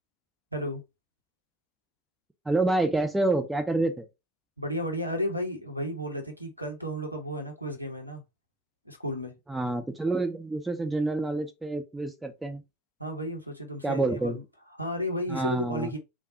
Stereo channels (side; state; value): both; normal; correlation 0.49